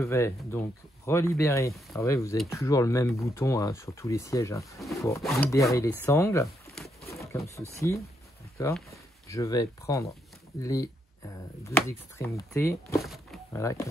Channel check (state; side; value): normal; both; correlation 0.78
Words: donc relibérer. Alors oui, vous avez toujours le même bouton hein, sur tous les sièges hein, pour libérer les sangles, comme ceci. D'accord. Je vais prendre les deux extrémités, voilà,